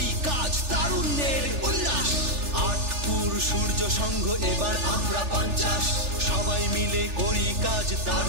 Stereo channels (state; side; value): late; left; 3.4 ms